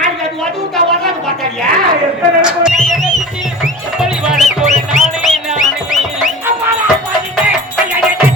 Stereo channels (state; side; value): normal; both; correlation 0.35